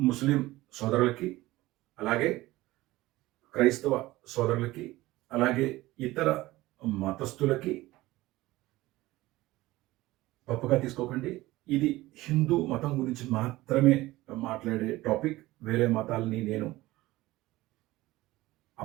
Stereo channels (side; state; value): left; quieter; 18.3 dB